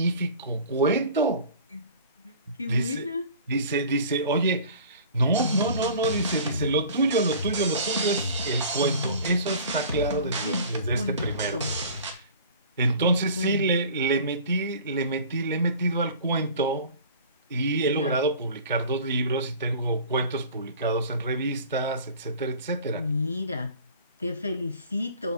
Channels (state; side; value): inverted; both; correlation -0.44